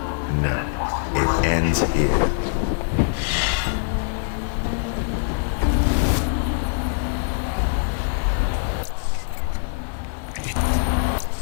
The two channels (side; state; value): right; silent; digital silence